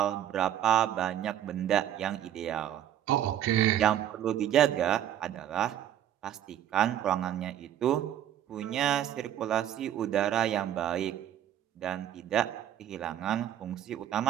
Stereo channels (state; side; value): quieter; left; 11.0 dB